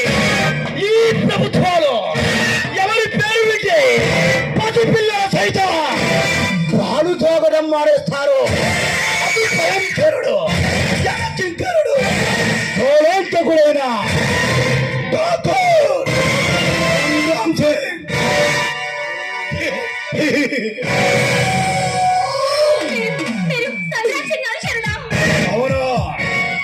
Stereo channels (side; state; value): both; identical; correlation 1.00